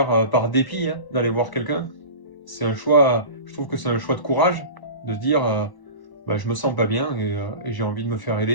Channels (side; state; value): right; late; 1.1 ms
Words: par dépit, hein, d'aller voir quelqu'un. C'est un choix, je trouve que c'est un choix de courage de se dire, bah, je me sens pas bien et j'ai envie de me faire